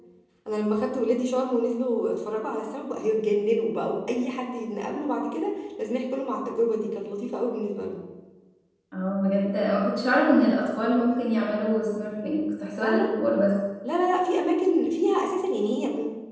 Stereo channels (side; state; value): both; identical; correlation 1.00